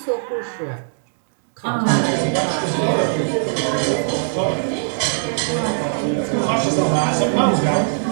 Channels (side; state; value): left; silent; digital silence